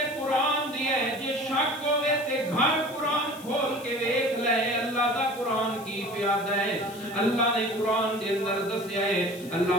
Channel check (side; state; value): left; noise; hiss, 19 dB below the sound